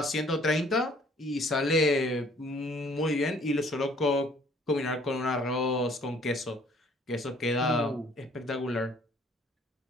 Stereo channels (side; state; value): both; normal; correlation 0.58